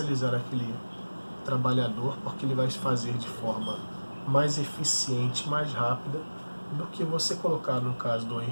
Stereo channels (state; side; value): inverted; both; correlation -1.00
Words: aquele trabalhador, porque ele vai fazer de forma mais eficiente, mais rápida, do que você colocar, no caso do